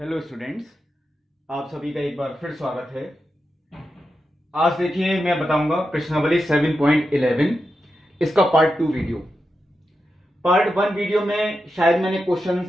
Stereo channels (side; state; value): both; normal; correlation 0.89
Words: students, आप सभी का एक बार फिर स्वागत है। आज देखिए मैं बताऊंगा प्रश्नावली 7.11 इसका पार्ट 2 वीडियो। पार्ट 1 वीडियो में शायद मैंने